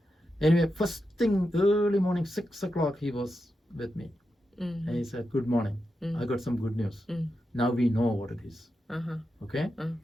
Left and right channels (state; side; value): normal; both; correlation 0.88